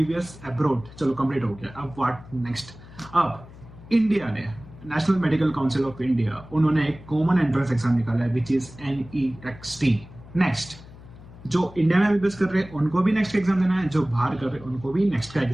अब्रॉड। चलो कंप्लीट हो गया। अब व्हाट नेक्स्ट? अब इंडिया ने, national medical council of India, उन्होंने एक कॉमन एंट्रेंस एग्जाम निकाला है विच इज NEXT। नेक्स्ट, जो इंडिया में एमबीबीएस कर रहे हैं उनको भी नेक्स्ट एग्जाम देना है, जो बाहर कर रहे हैं उनको भी नेक्स्ट का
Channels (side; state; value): left; noise; hum, 19 dB below the sound